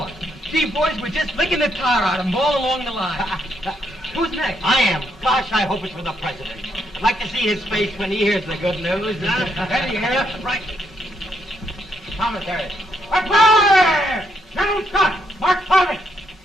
Gee, boys, we're just licking the tar out of him all along the line. Who's next? I am. Gosh, I hope it's for the president. I'd like to see his face when he hears the good news, huh? Ready here. Right. Commissary. Fire! General Scott! Mark Farley!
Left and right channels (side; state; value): both; normal; correlation 0.77